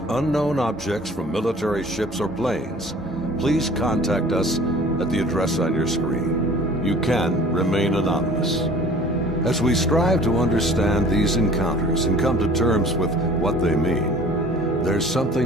unknown objects from military ships or planes, please contact us at the address on your screen. You can remain anonymous. As we strive to understand these encounters and come to terms with what they mean, there's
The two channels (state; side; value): normal; both; correlation 0.48